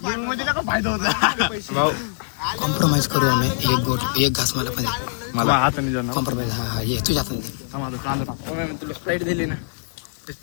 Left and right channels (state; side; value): silent; right; digital silence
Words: होता. कॉम्प्रोमाइज करू आम्ही. एक घास मला पण हाताने जाणार. कॉम्प्रोमाइज. हा ये तुझ्या हाताने. कांदा तुला स्प्राईट दिली ना.